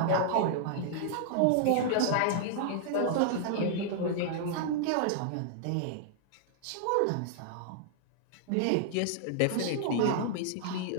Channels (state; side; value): different; both; correlation -0.01